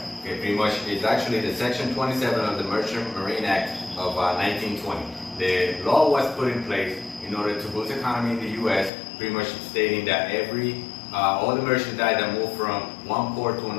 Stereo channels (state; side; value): drops out; right; at 8.9 s